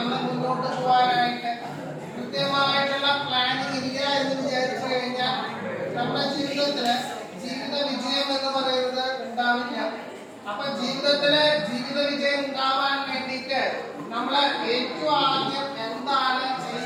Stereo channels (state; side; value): identical; both; correlation 1.00